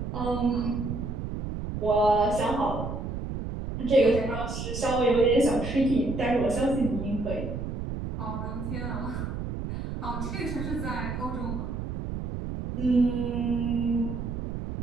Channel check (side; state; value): right; noise; rumble, 5 dB below the sound